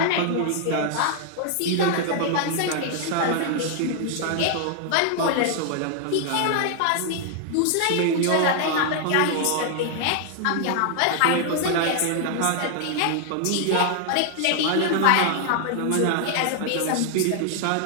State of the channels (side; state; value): both; different; correlation 0.00